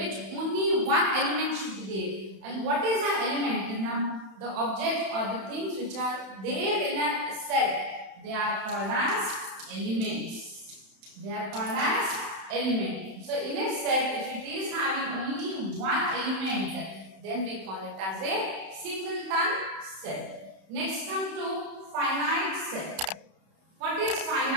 only one element should be there. And what is an element? The object or the things which are there in a set, they are called as elements. They are called as elements. So in a set, if it is having only one element, then we call it as a singleton set. Next come to finite set. What is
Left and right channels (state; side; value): late; left; 31 ms